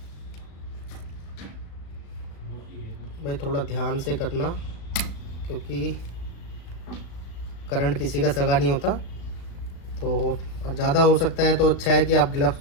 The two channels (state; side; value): late; right; 36 ms